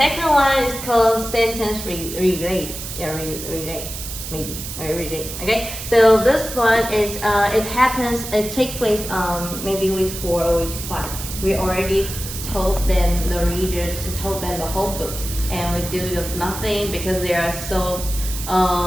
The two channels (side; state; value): right; noise; hiss, 8 dB below the sound